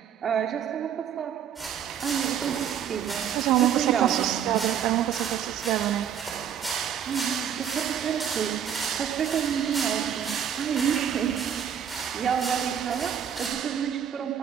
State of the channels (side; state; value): left; quieter; 8.9 dB